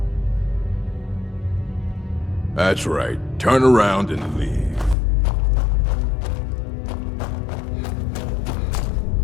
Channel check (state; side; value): drops out; right; at 5.0 s